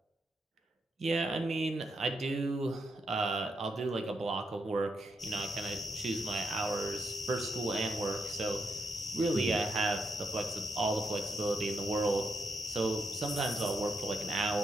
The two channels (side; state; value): both; normal; correlation 0.81